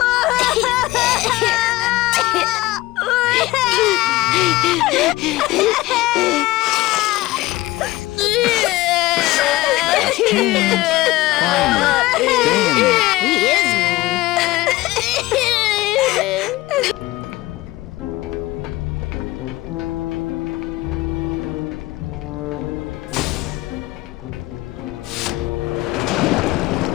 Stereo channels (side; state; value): right; quieter; 18.6 dB